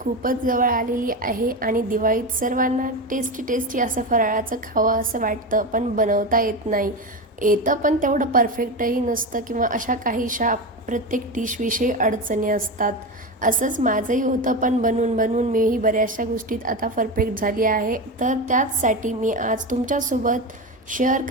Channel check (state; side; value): normal; both; correlation 0.19